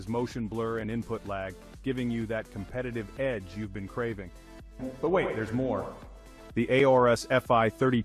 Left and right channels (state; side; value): identical; both; correlation 1.00